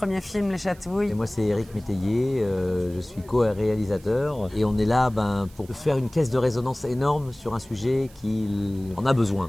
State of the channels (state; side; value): noise; right; hiss, 25 dB below the sound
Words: film, Les Chatouilles. Et moi, c'est Éric Métayer, je suis co-réalisateur. Et on est là pour faire une caisse de résonance énorme sur un sujet qui en a